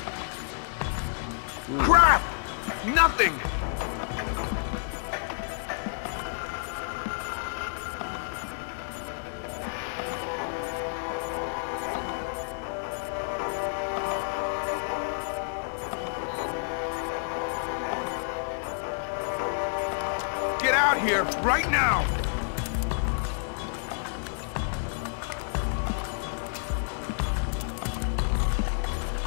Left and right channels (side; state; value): right; silent; digital silence